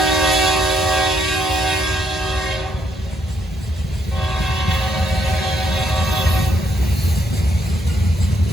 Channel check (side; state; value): both; normal; correlation 0.74